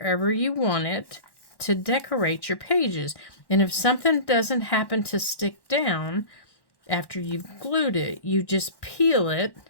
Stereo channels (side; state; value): right; late; 1.1 ms